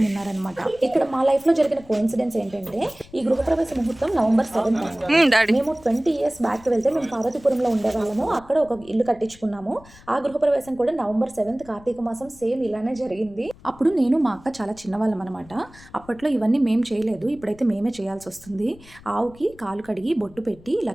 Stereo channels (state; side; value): noise; left; rumble, 23 dB below the sound